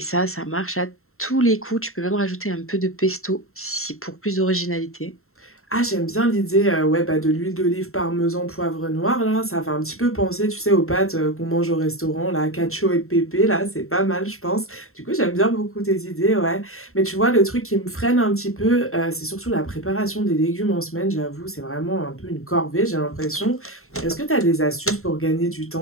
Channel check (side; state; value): right; late; 0.62 ms